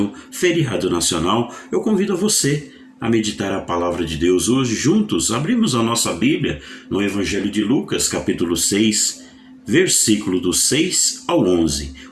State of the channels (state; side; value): identical; both; correlation 1.00